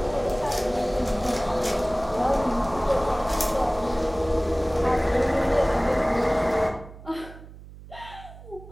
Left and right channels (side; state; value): right; noise; hum, 17 dB below the sound